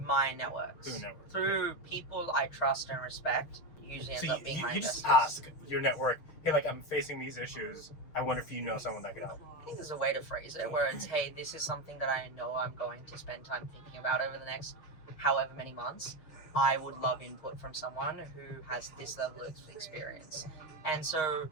my networks. Through people I trust and respect. Usually ends up being my investors. You just ask your network, hey, like, I'm facing these issues. I wonder if you know someone that could help. I think there's a way to phrase it where it's, hey, this is something that I know I'm going to spend time thinking about over the next however many months. I would love input from someone who has this level of experience. And so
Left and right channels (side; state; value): right; late; 6.4 ms